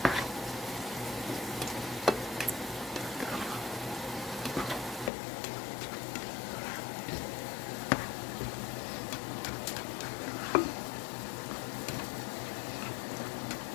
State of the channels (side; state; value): right; drops out; at 5.1 s